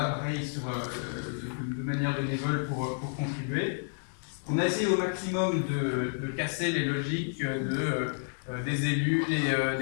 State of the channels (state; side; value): silent; right; digital silence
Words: pareil, de manière bénévole pour contribuer. On a essayé au maximum de casser les logiques des élus,